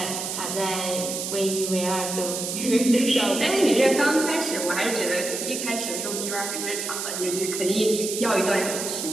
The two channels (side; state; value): right; noise; hiss, 4 dB below the sound